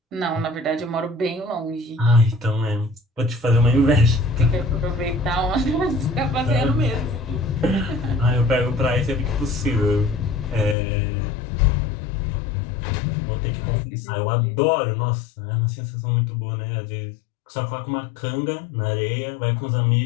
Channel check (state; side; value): drops out; right; at 10.8 s